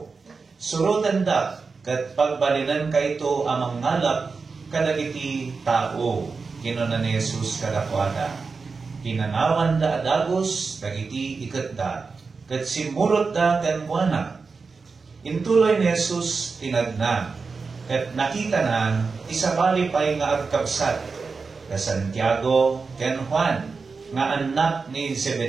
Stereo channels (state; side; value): quieter; left; 4.6 dB